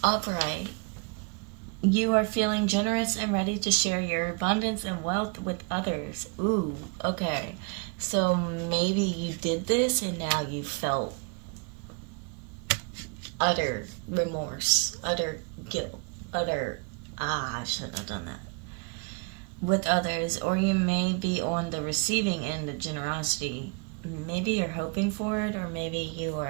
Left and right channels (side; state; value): left; quieter; 32.8 dB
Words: Alright. You are feeling generous and ready to share your abundance and wealth with others. Ooh, okay. So maybe you did this and now you felt utter remorse, utter guilt, utter, I shouldn't have done that, with others. Or you may be on the receiving end of generosity. Maybe you're hoping for it, or maybe you